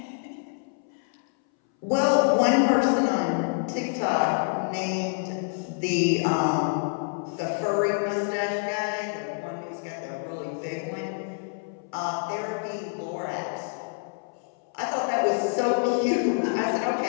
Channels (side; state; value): right; silent; 60 dB below the other